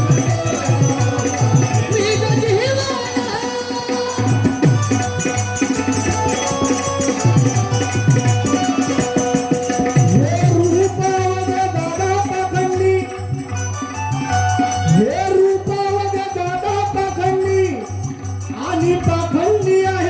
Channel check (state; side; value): identical; both; correlation 1.00